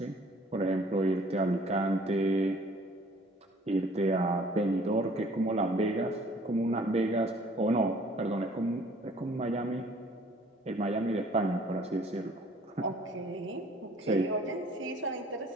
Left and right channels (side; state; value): both; normal; correlation 0.55